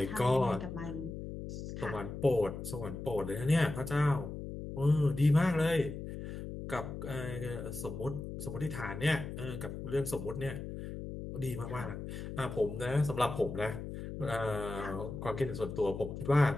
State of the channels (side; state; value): left; noise; hum, 8 dB below the sound